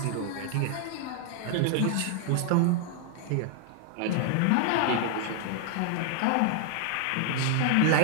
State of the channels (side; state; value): both; different; correlation 0.00